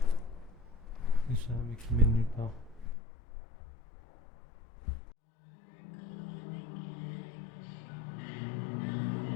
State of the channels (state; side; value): drops out; right; at 3.0 s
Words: C'est ça, mais qui mène nulle part.